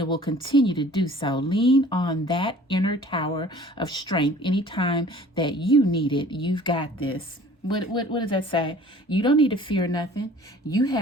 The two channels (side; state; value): both; normal; correlation 0.49